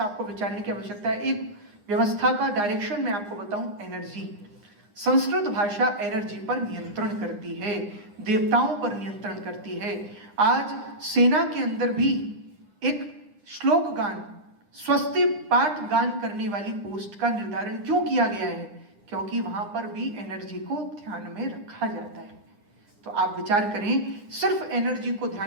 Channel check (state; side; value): late; left; 9.6 ms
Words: आपको विचारने की आवश्यकता है। एक व्यवस्था का डायरेक्शन मैं आपको बताऊं, एनर्जी। संस्कृत भाषा एनर्जी पर नियंत्रण करती है, देवताओं पर नियंत्रण करती है। आज सेना के अंदर भी एक श्लोक गान, स्वस्ति पाठ गान करने वाली पोस्ट का निर्धारण क्यों किया गया है? क्योंकि वहां पर भी एनर्जी को ध्यान में रखा जाता है। तो आप विचार करें, सिर्फ एनर्जी को